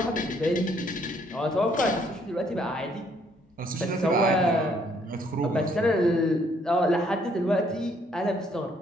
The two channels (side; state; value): both; normal; correlation 0.67